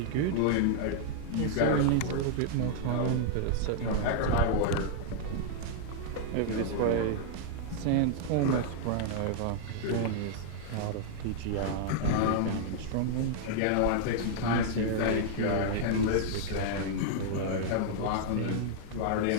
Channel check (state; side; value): different; both; correlation -0.01